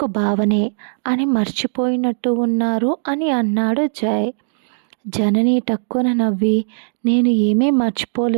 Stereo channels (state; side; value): silent; left; digital silence